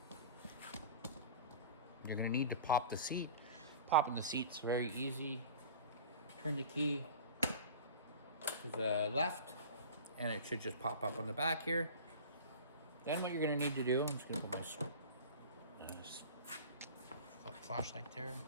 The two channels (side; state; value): both; inverted; correlation -0.38